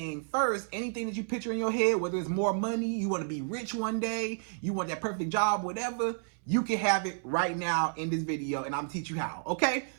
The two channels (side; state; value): left; silent; 57 dB below the other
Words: first, anything that you picture in your head, whether it's more money, you want to be rich one day, you want that perfect job, whatever, you can have it right now in this video, and I'm gonna teach you how, okay?